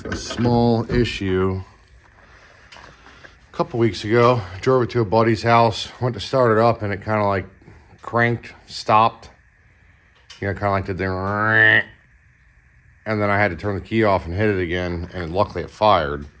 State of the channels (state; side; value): identical; both; correlation 1.00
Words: a small issue a couple weeks ago. I drove it to a buddy's house, went to start it up, and it kind of like cranked, stopped. Kind of like did the, and then I had to turn the key off and hit it again, and luckily it fired